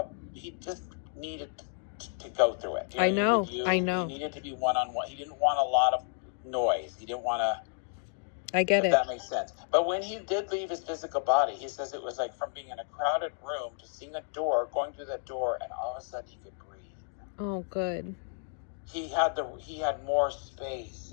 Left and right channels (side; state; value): right; silent; 57 dB below the other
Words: he just needed to go through it. I know. He needed to be one-on-one. He didn't want a lot of noise. He didn't want to. I get it. That makes sense. But when he did leave his physical body, he says it was like from being in a crowded room to seeing a door, going through that door, and all of a sudden he could breathe. Oh, good. He had more